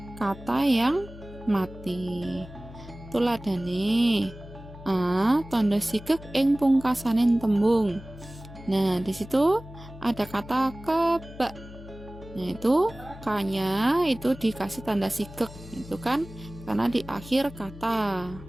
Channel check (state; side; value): noise; left; hum, 16 dB below the sound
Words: kata yang mati. Tuladhane tandha sigek ing pungkasaning tembung. Nah, di situ ada kata kebak. Nah, itu kanya itu dikasih tanda sigek, itu kan karena di akhir kata.